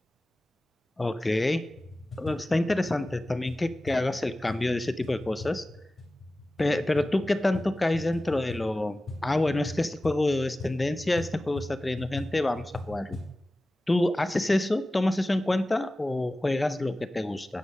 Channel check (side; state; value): both; normal; correlation 0.96